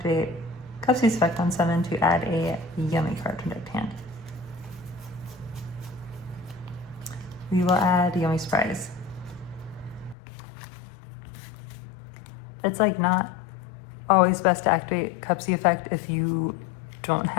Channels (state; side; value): drops out; right; at 10.2 s